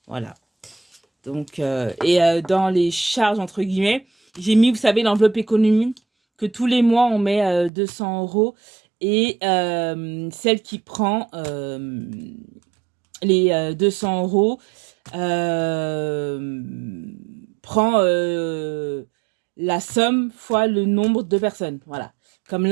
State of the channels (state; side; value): drops out; left; at 7.7 s